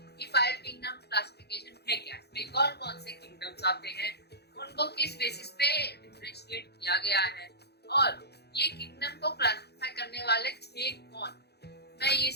कि 5 किंगडम क्लासिफिकेशन है क्या, इसमें कौन कौन से किंगडम्स आते हैं, उनको किस बेसिस पे डिफरेंशिएट किया गया है और ये किंगडम को क्लासिफाई करने वाले थे कौन। मैं ये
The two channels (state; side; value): late; right; 0.48 ms